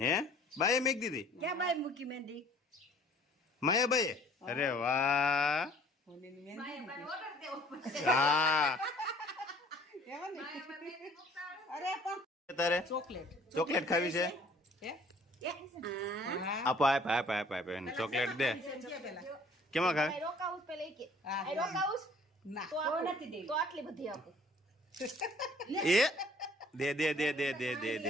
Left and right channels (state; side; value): normal; both; correlation 0.54